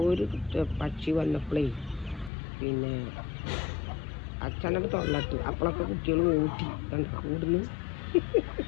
ഒരു പക്ഷി വന്നപ്പോഴേ പിന്നെ അച്ഛനോട് തൊള്ളട്ട്. അപ്പോഴൊക്കെ കുട്ടികൾ ഓട്ടി കണ്ട കൂടുന്നു.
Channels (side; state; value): right; drops out; at 2.3 s